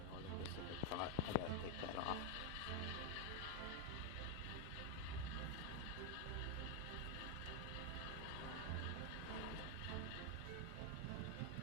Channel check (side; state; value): both; different; correlation 0.01